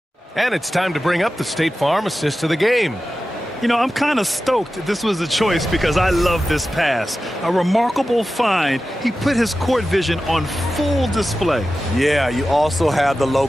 And it's time to bring up the State Farm assist of the game. You know, I'm kind of stoked this was a choice because I love this pass. A remarkable find. He put his court vision on full display. Yeah, you also have the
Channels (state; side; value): normal; both; correlation 0.94